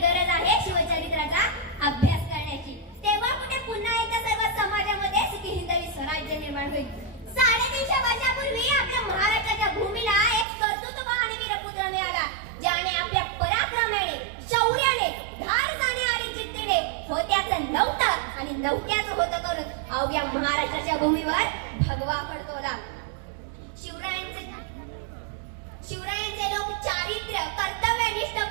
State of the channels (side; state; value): left; drops out; at 10.5 s